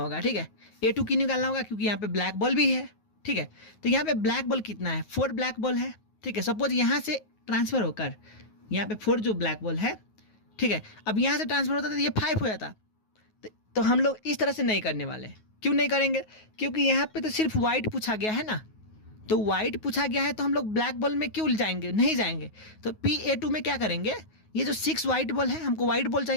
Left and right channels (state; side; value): late; right; 9.4 ms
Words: ठीक है। A2 की निकालना होगा क्योंकि यहाँ पे ब्लैक बॉल भी है, ठीक है। तो यहाँ पे ब्लैक बॉल कितना है, 4 ब्लैक बॉल है, ठीक है। सपोज यहाँ से ट्रांसफर होकर यहाँ पे 4 जो ब्लैक बॉल है, ठीक है। अब यहाँ से ट्रांसफर होता तो ये 5 हो जाता। तो हम लोग इस तरह से नहीं करने वाले। क्यों नहीं करेंगे, क्योंकि यहाँ पे तो सिर्फ वाइट पूछा गया है ना, तो वाइट पूछा गया है, तो हम लोग ब्लैक बॉल में क्यों जाएंगे, नहीं जाएंगे। तो PA2 में क्या करेंगे, ये जो 6 वाइट बॉल है, हमको वाइट बॉल